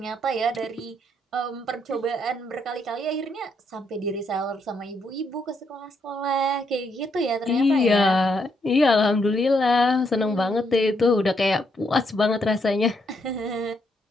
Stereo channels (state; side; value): normal; both; correlation 0.76